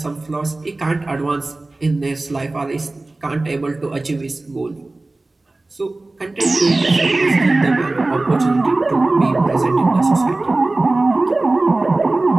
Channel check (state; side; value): quieter; left; 3.0 dB